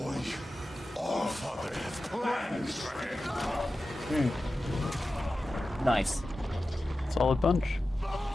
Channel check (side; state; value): both; normal; correlation 0.94